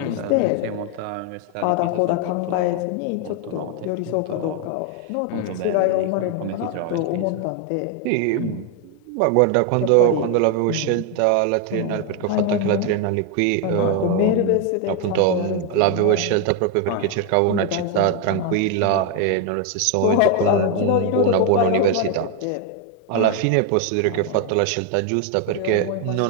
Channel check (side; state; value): both; different; correlation 0.01